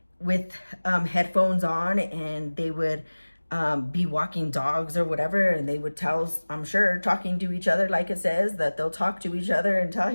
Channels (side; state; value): both; inverted; correlation -1.00